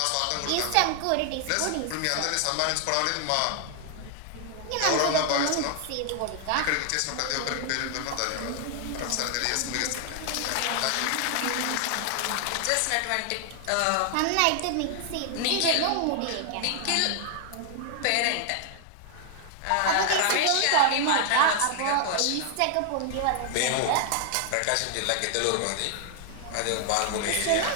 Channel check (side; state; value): both; different; correlation 0.00